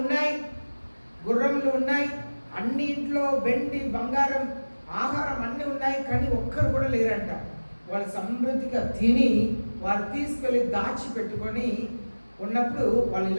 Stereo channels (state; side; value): inverted; both; correlation -1.00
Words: ఉన్నాయి, గుర్రంలు ఉన్నాయి, అన్నింట్లో వెండి బంగారం ఆహారం అన్నీ ఉన్నాయి, కానీ ఒక్కరు కూడా లేరంట. వాళ్ళు సమృద్ధిగా తిని వారు తీసుకెళ్ళి దాచిపెట్టుకొని ఉన్నప్పుడు వాళ్ళు